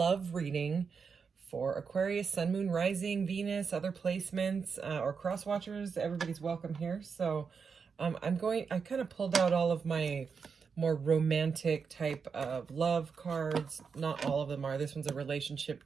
reading for Aquarius, Sun, Moon, Rising, Venus, other placements, or cross watchers. Everybody's welcome here. So I kind of pulled out all of my more romantic type of love cards. Not all of them are. This one's a relationship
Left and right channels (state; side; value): quieter; left; 5.8 dB